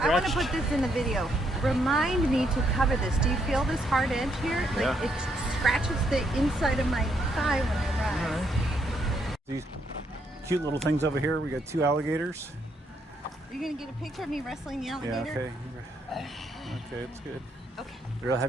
I want to put this in the video. Remind me to cover this. Do you feel this hard edge here? Like yeah. It scratches the inside of my thigh when I ride. All right. These cute little things over here. We got two alligators. Are you going to get a picture of me wrestling the alligator? Yeah, okay. Okay, it's good. Okay. I'd rather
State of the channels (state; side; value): normal; both; correlation 0.75